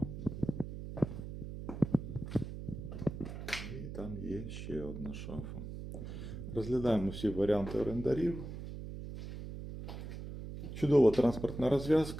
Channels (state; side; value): noise; right; hum, 8 dB below the sound